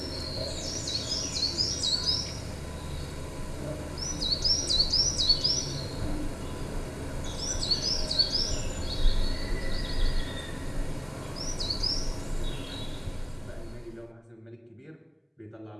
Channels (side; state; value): both; identical; correlation 1.00